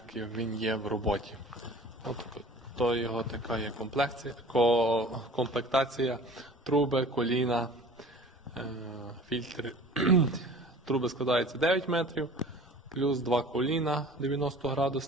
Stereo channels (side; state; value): both; normal; correlation 0.44